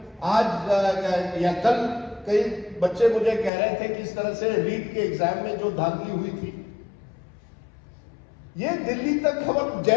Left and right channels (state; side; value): drops out; right; at 3.5 s